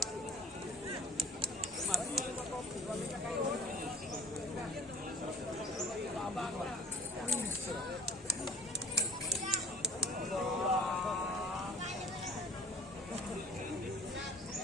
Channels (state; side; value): normal; both; correlation 0.45